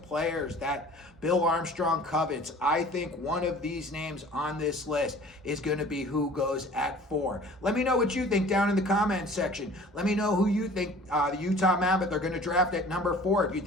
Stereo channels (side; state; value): both; normal; correlation 0.47